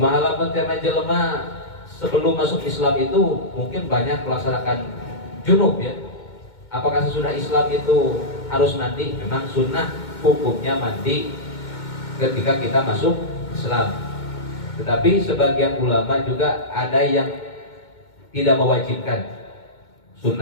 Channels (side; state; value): right; late; 2.2 ms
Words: lamun teh jelema sebelum masuk Islam itu mungkin banyak melaksanakan junub ya. Apakah sesudah Islam itu harus mandi? Memang sunnah hukumnya mandi ketika kita masuk Islam. Tetapi sebagian ulama juga ada yang tidak mewajibkan